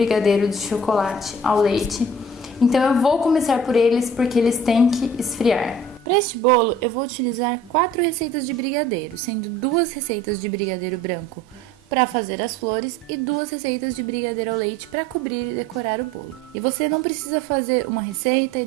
de chocolate ao leite. Então eu vou começar por eles porque eles têm que esfriar. Para este bolo, eu vou utilizar 4 receitas de brigadeiro, sendo 2 receitas de brigadeiro branco para fazer as flores e 2 receitas de brigadeiro ao leite para cobrir e decorar o bolo. E você não precisa fazer uma receita e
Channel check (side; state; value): both; normal; correlation 0.49